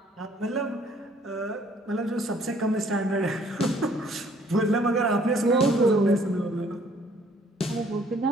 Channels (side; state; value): both; normal; correlation 0.60